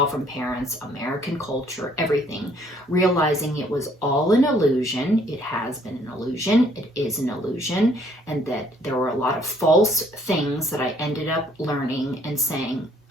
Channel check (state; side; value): normal; both; correlation 0.63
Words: from parents, American culture, everything. Realizing it was all an illusion. It has been an illusion. It is an illusion. And that there were a lot of false things that I ended up learning and saying,